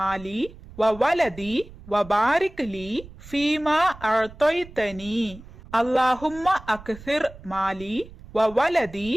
வ வலதி வ பாரிக் லீ ஃபீமா அஅதைதனி. அல்லாஹும்ம அக்ஸிர் மாலி வ வலதி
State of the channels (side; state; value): right; noise; rumble, 18 dB below the sound